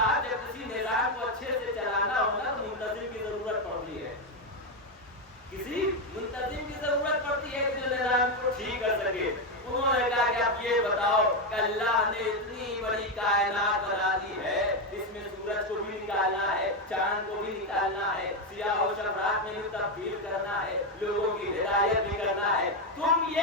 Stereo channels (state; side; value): normal; both; correlation 0.07